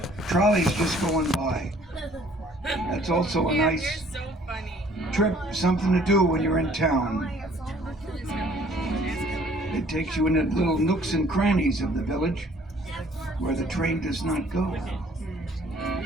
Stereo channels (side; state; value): both; normal; correlation 0.57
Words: trolley's just going by. That's also a nice trip, something to do when you're in town. It takes you into little nooks and crannies of the village where the train does not go.